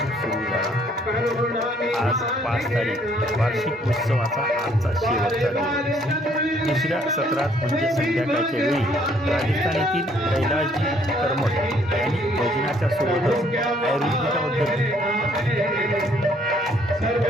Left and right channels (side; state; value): both; normal; correlation 0.64